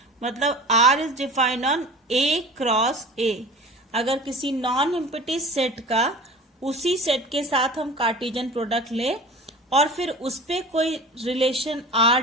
मतलब R is defined on A cross A। अगर किसी नॉन एम्प्टी सेट का उसी सेट के साथ हम कार्टेशियन प्रोडक्ट ले और फिर उस पे कोई रिलेशन R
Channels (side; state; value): both; normal; correlation 0.38